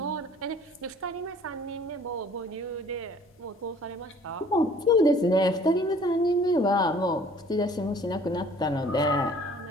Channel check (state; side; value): normal; both; correlation 0.53